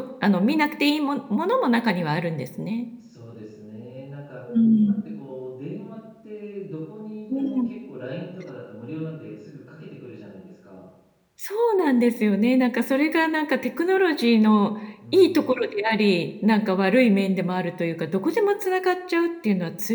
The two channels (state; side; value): identical; both; correlation 1.00